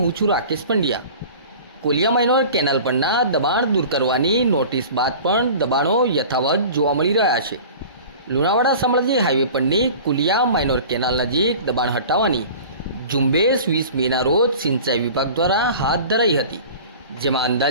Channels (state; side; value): inverted; both; correlation -0.40